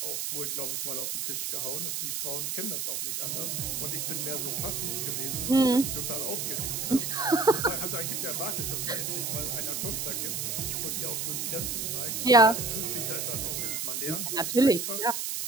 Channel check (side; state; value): right; noise; hiss, 2 dB below the sound